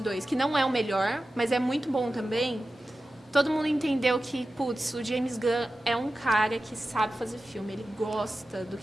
que não é o melhor, mas é muito bom também. Todo mundo entendeu que, putz, o James Gunn é um cara que sabe fazer filme, ele gosta do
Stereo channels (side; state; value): both; normal; correlation 0.94